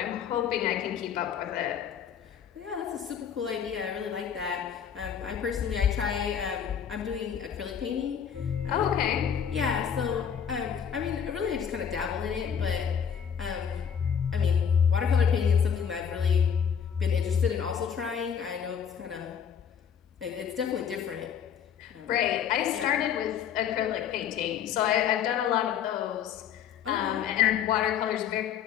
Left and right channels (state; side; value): quieter; right; 7.9 dB